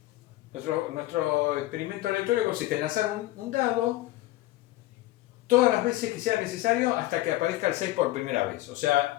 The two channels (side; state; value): right; quieter; 16.8 dB